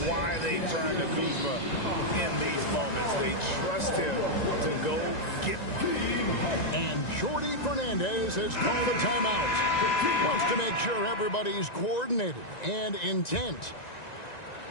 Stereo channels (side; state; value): right; late; 1.9 ms